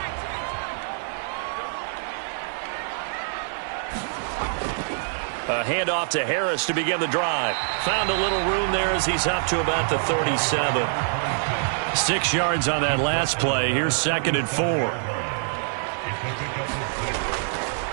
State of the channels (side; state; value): left; silent; digital silence